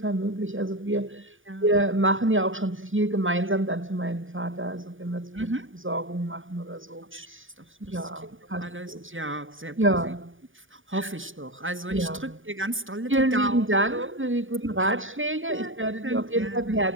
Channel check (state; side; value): late; left; 0.57 ms